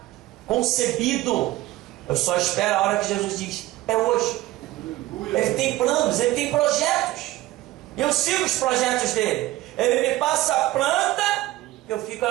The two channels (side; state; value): left; quieter; 16.9 dB